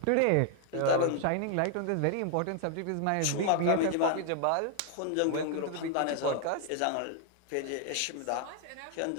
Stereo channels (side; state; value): both; different; correlation 0.00